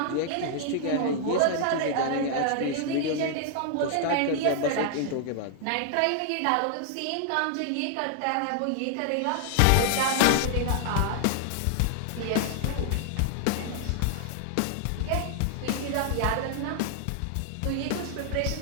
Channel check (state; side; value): different; both; correlation 0.00